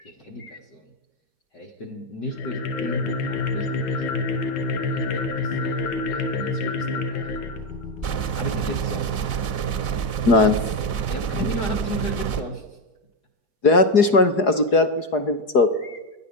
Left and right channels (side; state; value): right; late; 4.8 ms